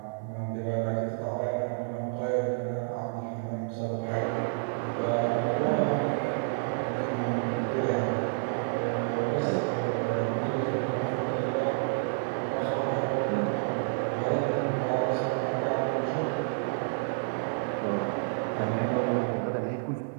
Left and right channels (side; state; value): left; silent; 58 dB below the other